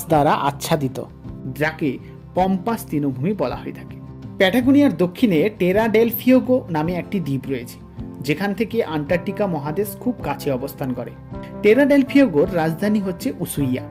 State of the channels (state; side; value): identical; both; correlation 1.00